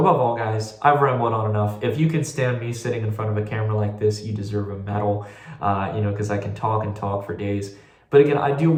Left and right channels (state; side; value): identical; both; correlation 1.00